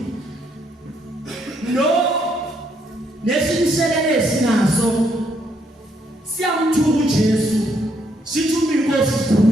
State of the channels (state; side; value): normal; both; correlation 0.73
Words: lo lesinselele sinaso siyamthuka uJesu sithuma inkosi